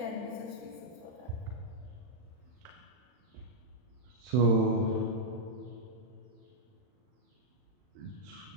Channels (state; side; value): late; left; 40 ms